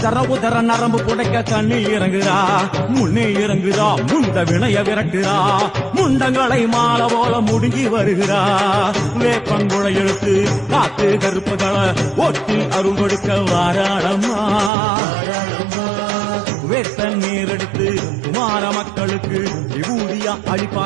உதர நரம்பு புடைக்க கண்ணில் இறங்குறா முன்னே இறங்குறா முண்ட வினைய விரட்டுறா முண்டங்களை மாலை போல முடுங்கி வருகிறா வேப்பங்குழை எழுத்து காத்து கருப்புகளை ஒட்டி அருள் கொடுக்க வாராளம்மா வேட்ட நீர் எடுத்து குமார மக்களுக்கு விபூதியா அளிப்பா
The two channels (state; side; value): drops out; left; at 14.7 s